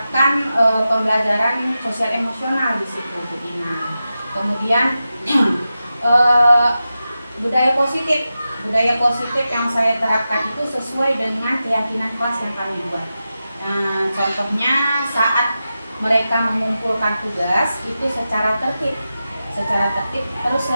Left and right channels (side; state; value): both; inverted; correlation -0.92